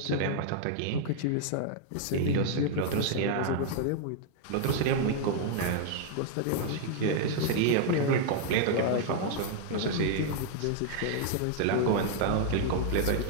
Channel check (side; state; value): both; different; correlation 0.00